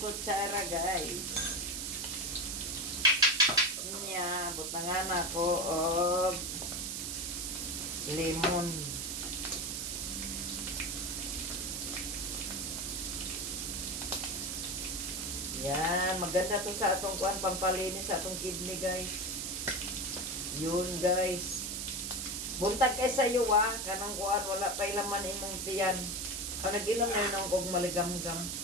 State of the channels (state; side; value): noise; right; hiss, 3 dB below the sound